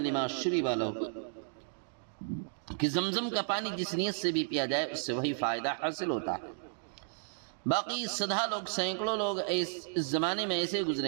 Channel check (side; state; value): left; silent; digital silence